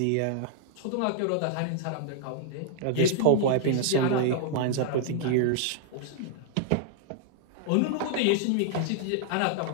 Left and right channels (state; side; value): different; both; correlation -0.01